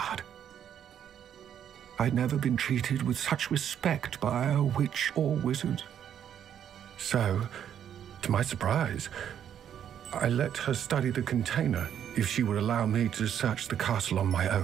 I'd never been treated with such respect by a witch or wizard. So, to my surprise, I let her study the container if she would allow me to search the castle on my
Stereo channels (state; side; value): quieter; left; 9.4 dB